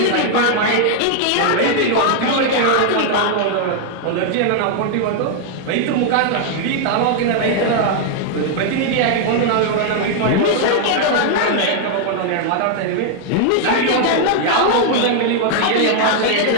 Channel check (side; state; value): both; different; correlation 0.00